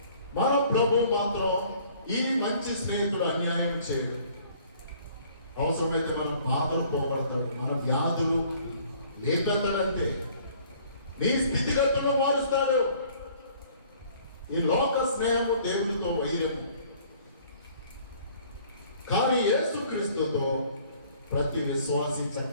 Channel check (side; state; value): both; inverted; correlation -0.56